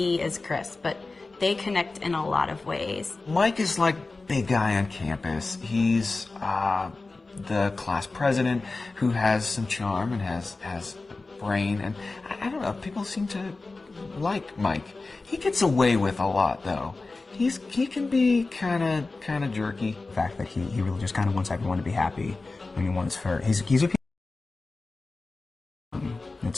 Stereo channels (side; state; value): right; quieter; 3.5 dB